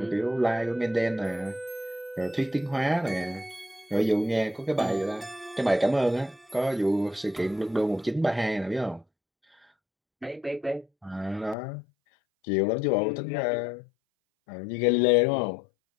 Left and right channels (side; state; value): right; drops out; at 11.6 s